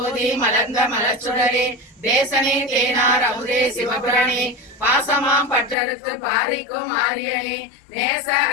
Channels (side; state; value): right; drops out; at 5.8 s